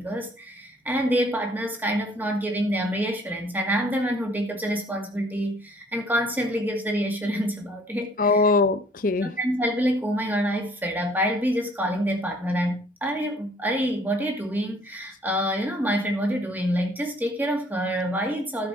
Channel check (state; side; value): normal; both; correlation 0.59